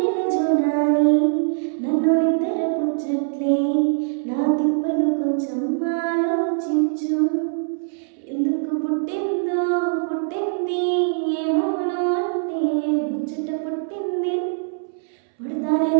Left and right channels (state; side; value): silent; left; 64 dB below the other